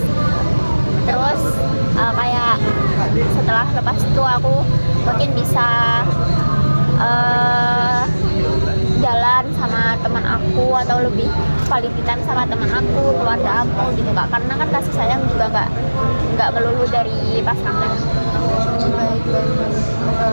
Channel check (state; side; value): inverted; both; correlation -1.00